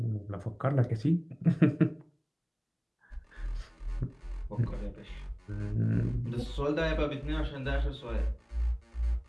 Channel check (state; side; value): identical; both; correlation 1.00